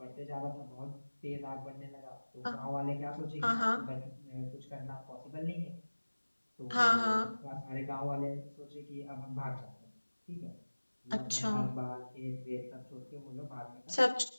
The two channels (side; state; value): both; inverted; correlation -1.00